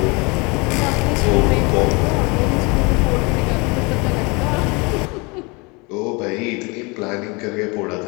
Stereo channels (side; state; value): right; quieter; 28.3 dB